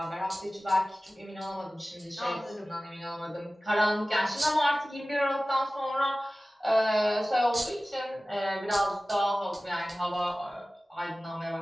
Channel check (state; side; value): normal; both; correlation 0.97